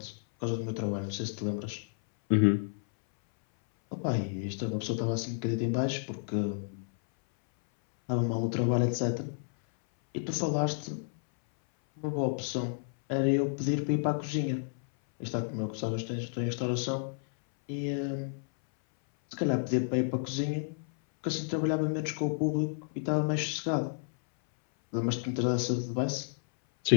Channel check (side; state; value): right; silent; 57 dB below the other